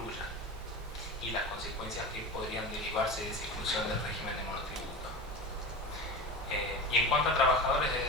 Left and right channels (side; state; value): both; normal; correlation 0.28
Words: y las consecuencias que podrían derivarse de esa exclusión del régimen de monotributo. Y en cuanto a trabajadores